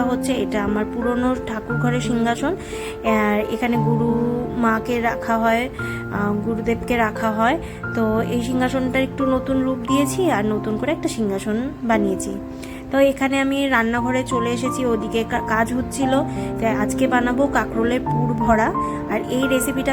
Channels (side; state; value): both; identical; correlation 1.00